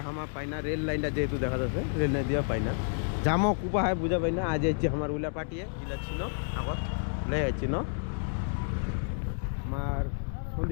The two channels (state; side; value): silent; right; digital silence